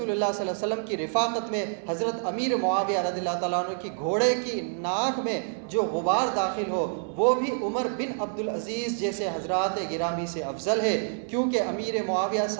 اللہ صلی اللہ علیہ وسلم کی رفاقت میں حضرت امیر معاویہ رضی اللہ تعالیٰ عنہ کی گھوڑے کی ناک میں جو غبار داخل ہو وہ بھی عمر بن عبدالعزیز جیسے حضرات گرامی سے افضل ہے، کیونکہ امیر معاویہ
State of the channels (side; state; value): left; silent; 60 dB below the other